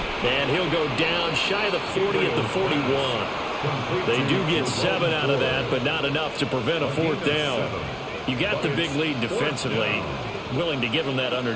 And he'll go down shy of the 40 at the 41. They do get 7 out of that, but not enough to prevent a 4th down. You got the big lead defensively. Willing to give them that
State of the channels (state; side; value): identical; both; correlation 1.00